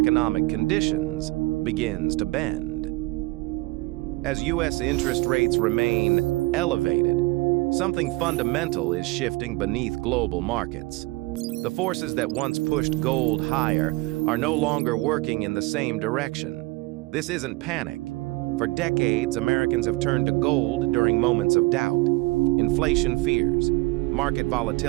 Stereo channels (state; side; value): quieter; left; 22.5 dB